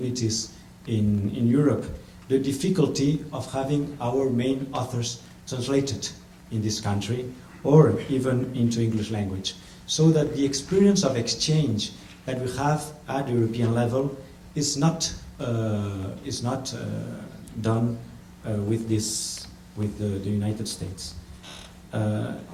in Europe, the difficulty of having our main authors translated in this country or even into English language. So that the experience of exchange that we have at the European level is not done with the United States.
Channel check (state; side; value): identical; both; correlation 1.00